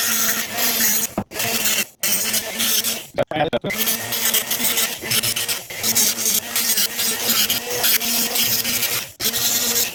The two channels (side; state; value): both; identical; correlation 1.00